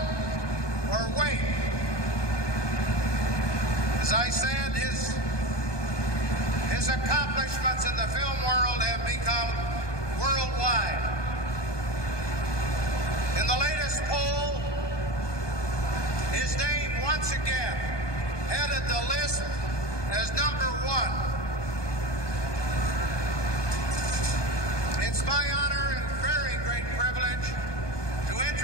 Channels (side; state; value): right; late; 1.2 ms